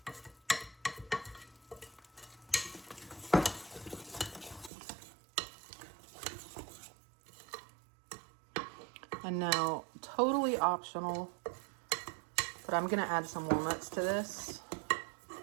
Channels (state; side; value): drops out; left; at 4.7 s